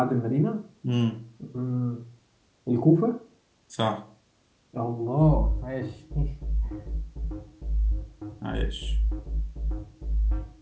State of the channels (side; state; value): both; identical; correlation 1.00